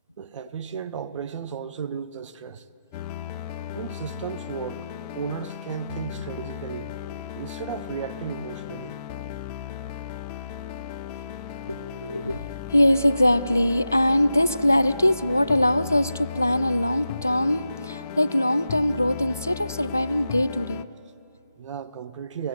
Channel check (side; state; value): both; inverted; correlation -0.89